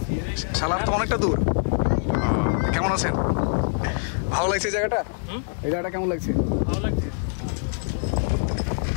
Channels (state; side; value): silent; right; digital silence